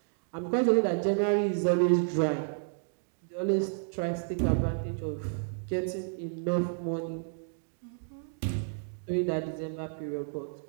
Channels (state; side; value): silent; left; digital silence